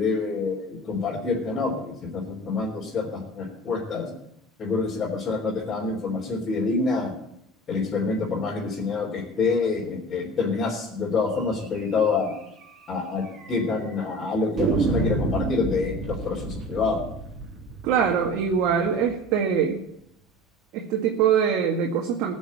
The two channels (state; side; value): normal; both; correlation 0.37